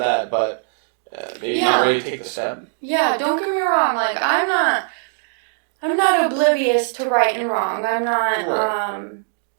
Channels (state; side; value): silent; left; digital silence